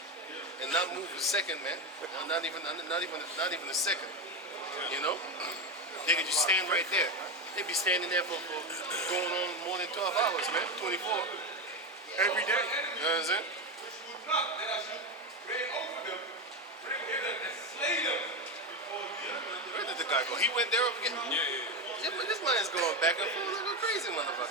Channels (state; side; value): normal; both; correlation 0.15